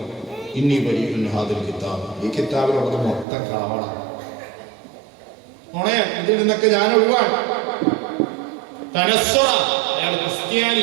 ഇന്നി ബരീഉൻ ഹാദിൽ കിതാബ്, ഈ കിതാബിലുള്ളത് മൊത്തം കളവാണ്. ഇതിൽ നിന്നൊക്കെ ഞാൻ ഒഴിവാണ്. തനസ്വറ, അയാൾ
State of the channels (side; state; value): left; drops out; at 3.2 s